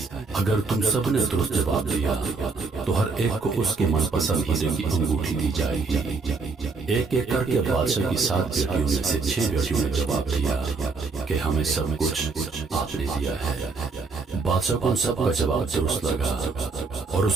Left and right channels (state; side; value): quieter; left; 4.3 dB